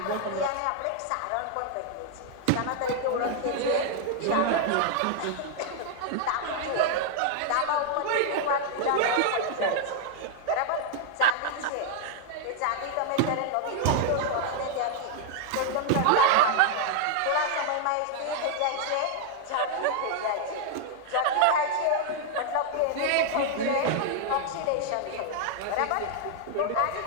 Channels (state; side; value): different; both; correlation 0.00